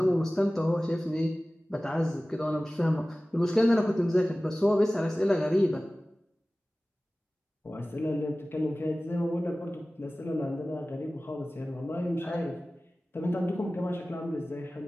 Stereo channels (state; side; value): normal; both; correlation 0.97